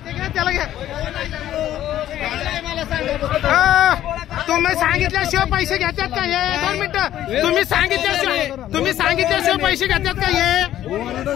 त्याला घ्या तुम्ही सांगितल्याशिवाय पैसे घेतात का हे 2 मिनिटं तुम्ही सांगितल्याशिवाय पैसे घेतात का हे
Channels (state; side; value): quieter; right; 12.4 dB